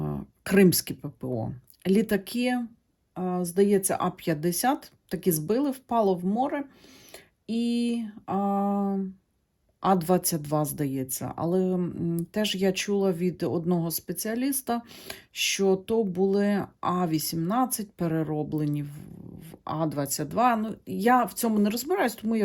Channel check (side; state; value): both; identical; correlation 1.00